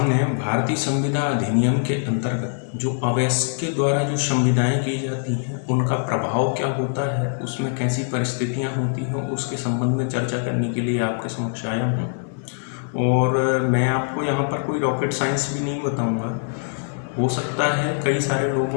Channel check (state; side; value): silent; right; 58 dB below the other